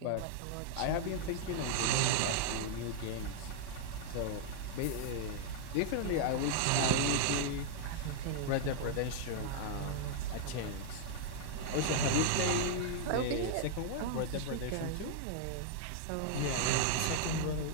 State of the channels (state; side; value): different; both; correlation -0.01